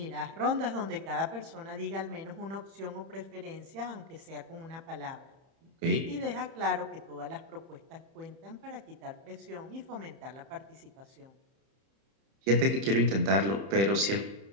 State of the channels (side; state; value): left; late; 31 ms